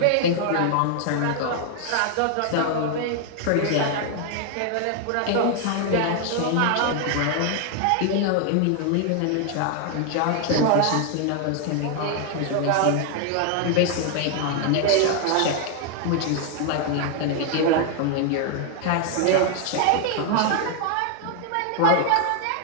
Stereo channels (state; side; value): different; both; correlation 0.00